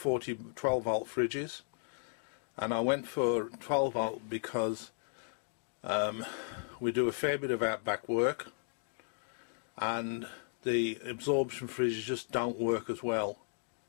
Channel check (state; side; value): silent; right; digital silence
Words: 12-volt fridges, and I went for 12-volt because we do a fair bit of outback work, and the absorption fridges just don't work as well.